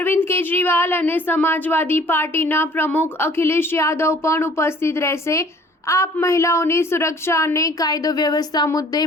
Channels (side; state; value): both; normal; correlation 0.54